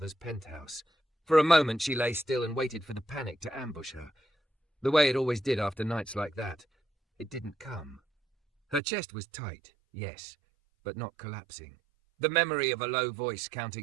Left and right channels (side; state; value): left; drops out; at 8.8 s